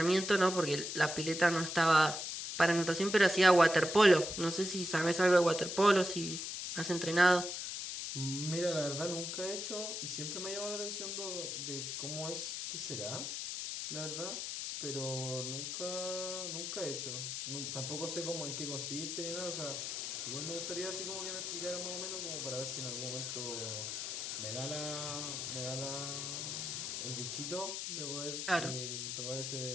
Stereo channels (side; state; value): left; noise; hiss, 4 dB below the sound